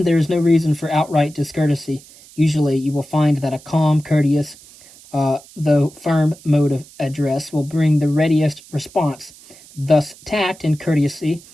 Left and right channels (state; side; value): noise; right; hiss, 23 dB below the sound